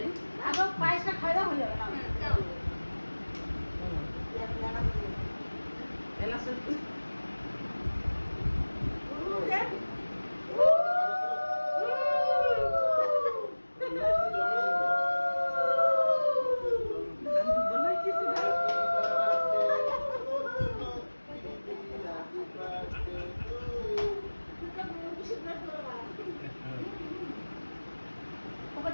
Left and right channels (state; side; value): inverted; both; correlation -1.00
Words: আবার পায়েসটা খাওয়া হয়ে যাবে না এলাচের